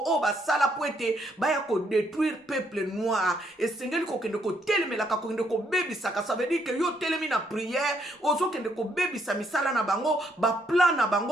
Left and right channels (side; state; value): both; normal; correlation 0.72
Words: oh ba sala poete, ba ya ko détruire peuple noir. Et sengeli ko kende ko telemela ka ko kende ko bebisaka, ça veut dire que yo telemi na prière, ozo kende ko bebisa misala na bango, ba plan na